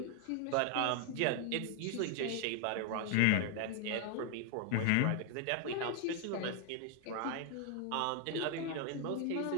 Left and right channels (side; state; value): both; different; correlation 0.00